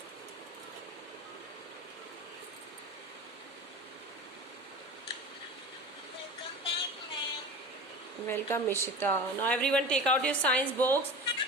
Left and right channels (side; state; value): both; normal; correlation 0.33